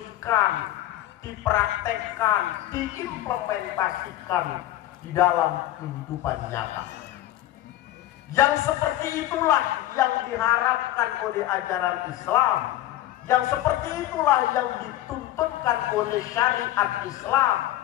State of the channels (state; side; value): quieter; right; 14.5 dB